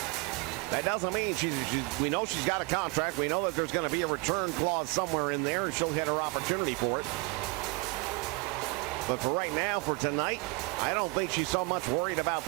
that doesn't mean we know she's got a contract. We know that there's going to be a return clause somewhere in there, and she'll get her opportunity for it. But for right now, for tonight, I don't think she's so much worried about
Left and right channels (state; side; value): quieter; left; 26.9 dB